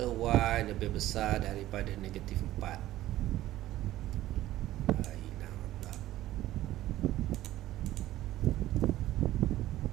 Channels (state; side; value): quieter; left; 14.8 dB